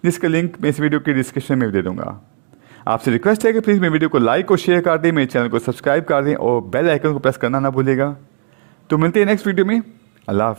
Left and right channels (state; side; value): silent; left; digital silence